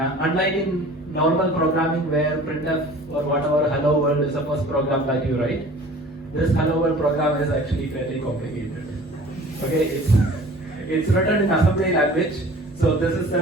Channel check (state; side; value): normal; both; correlation 0.46